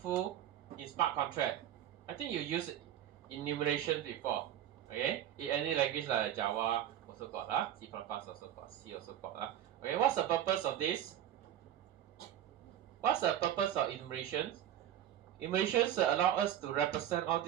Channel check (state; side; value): quieter; left; 11.2 dB